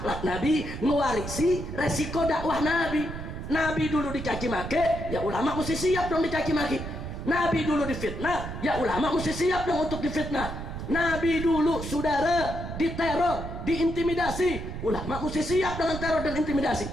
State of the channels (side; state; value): right; noise; rumble, 7 dB below the sound